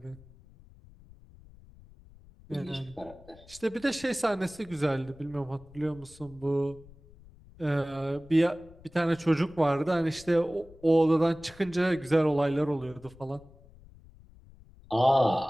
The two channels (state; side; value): noise; left; rumble, 23 dB below the sound